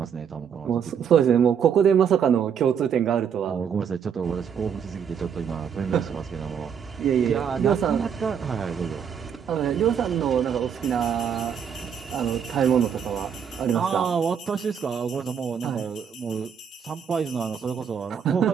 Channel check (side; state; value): left; quieter; 7.6 dB